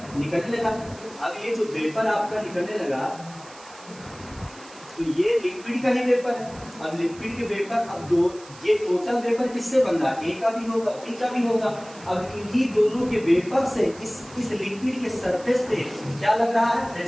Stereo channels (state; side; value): noise; right; hiss, 21 dB below the sound